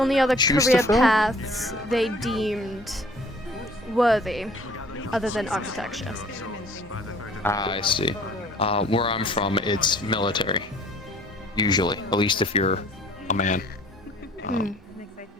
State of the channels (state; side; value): normal; both; correlation 0.53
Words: other choose to career fill? paths they deemed worthy other than architecture. Ah, I see. Where I'm from, it's military. Usually. At least if you're a man.